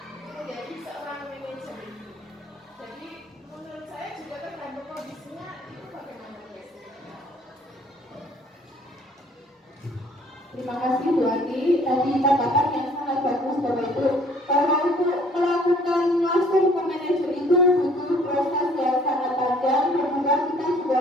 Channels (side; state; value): both; normal; correlation 0.58